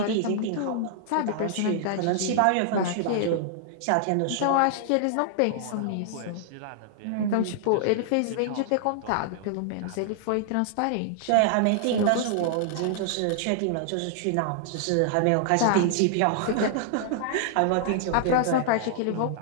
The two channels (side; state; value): both; different; correlation -0.01